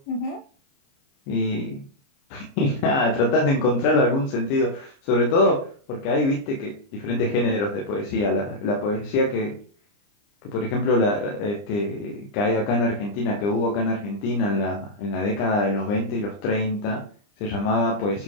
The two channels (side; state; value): right; late; 29 ms